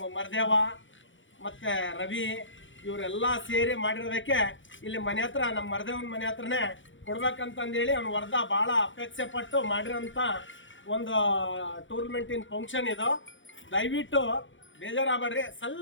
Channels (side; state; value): right; late; 0.56 ms